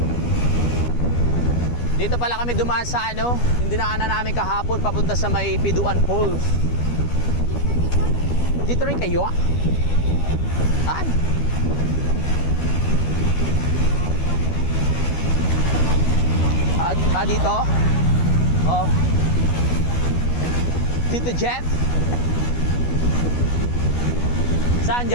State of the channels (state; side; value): late; right; 12 ms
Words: Dito pala kami dumaan sa ano, yung dinaanan namin kahapon papunta sa may Piduan Falls. Dito rin kayo ah? Saan? Dito? Oh. Tito Jeff? Saan